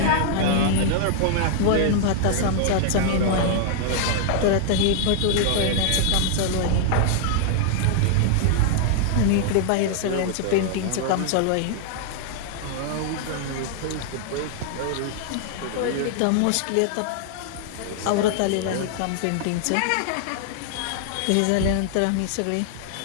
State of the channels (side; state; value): both; different; correlation 0.00